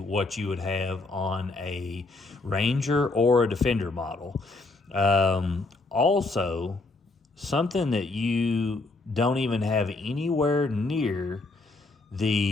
what you would have on a Ranger or a Defender model. Also, something that you don't even have anywhere near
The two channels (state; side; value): quieter; right; 3.3 dB